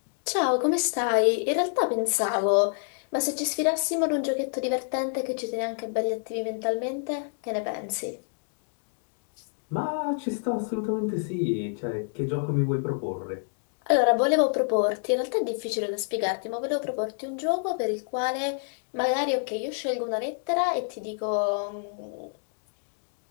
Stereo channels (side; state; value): right; silent; 59 dB below the other